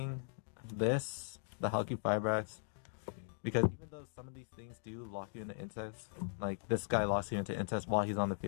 this, the Halki Fibrax, because even though some of these things do lock you into insects, like this guy locks you into insects while he's on the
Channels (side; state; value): right; silent; digital silence